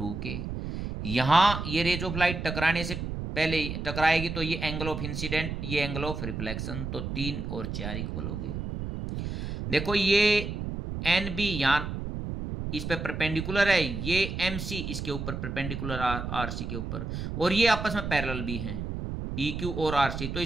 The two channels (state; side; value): noise; right; rumble, 5 dB below the sound